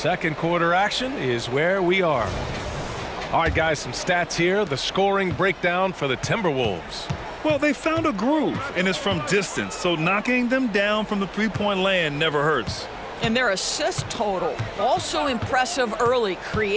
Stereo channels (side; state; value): both; identical; correlation 1.00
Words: quarter action is where we are. All right, guys, some stats here. The scoring breakdown for the Timberwolves. Well, they found a groove, and it's from distance, so knocking them down from the three-point land never hurts. And their assist total, also impressive early,